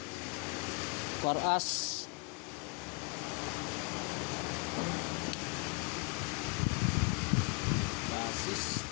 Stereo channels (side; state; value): right; quieter; 33.8 dB